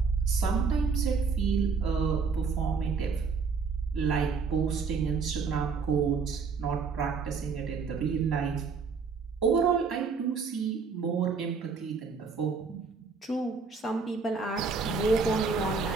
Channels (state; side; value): quieter; left; 5.1 dB